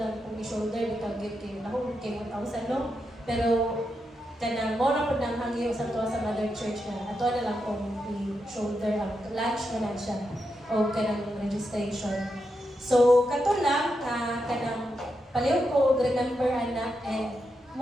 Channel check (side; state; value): both; normal; correlation 0.85